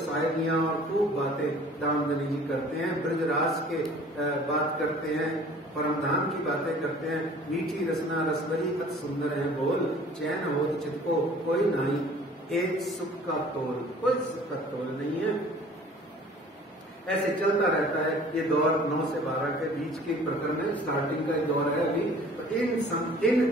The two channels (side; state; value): both; normal; correlation 0.50